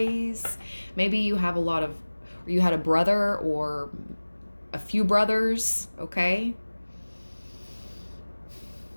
Maybe you have you had a brother or a few brothers, okay?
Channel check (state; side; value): inverted; both; correlation -1.00